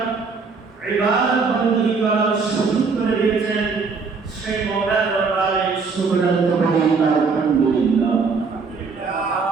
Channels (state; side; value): quieter; left; 4.8 dB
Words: ইবাদত বন্দী করার সুযোগ করে দিয়েছেন। সেই মওলার দরবারে শুকর আদায় করি আলহামদুলিল্লাহ।